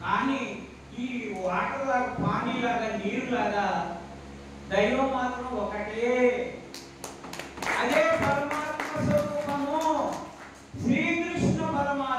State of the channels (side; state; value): both; identical; correlation 1.00